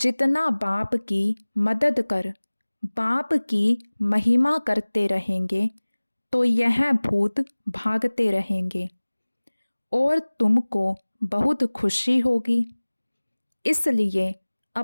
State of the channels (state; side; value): inverted; both; correlation -1.00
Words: बाप की मदद कर बाप की महिमा करते रहेंगे तो यह भूत भागते रहेंगे और तुमको बहुत खुशी होगी। इसलिए